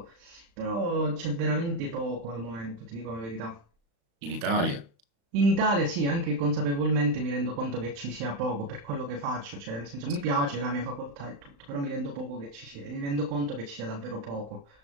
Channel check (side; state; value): left; late; 35 ms